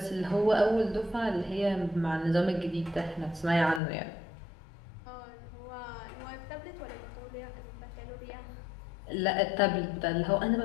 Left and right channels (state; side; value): drops out; right; at 3.8 s